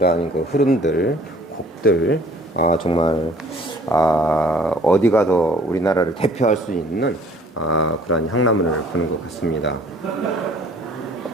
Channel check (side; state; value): both; normal; correlation 0.55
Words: 흐름들, 곡들 정말 어디 가도 우리나라를 대표할 수 있는 그런 향나무를 보는 것 같습니다.